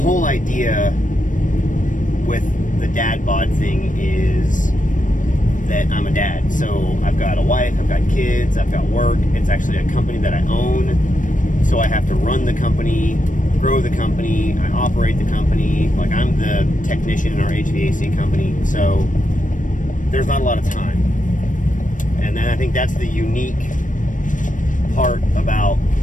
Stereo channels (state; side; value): late; right; 0.38 ms